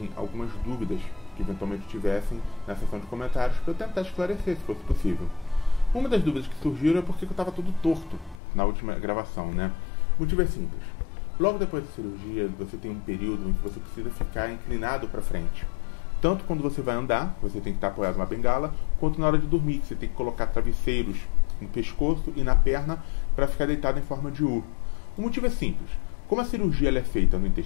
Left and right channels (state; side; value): drops out; right; at 8.4 s